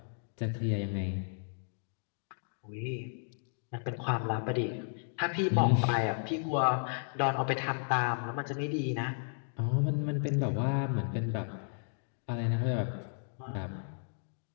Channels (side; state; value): right; silent; digital silence